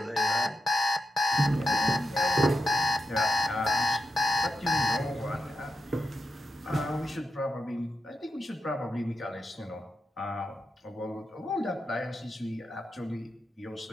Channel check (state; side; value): normal; both; correlation 0.88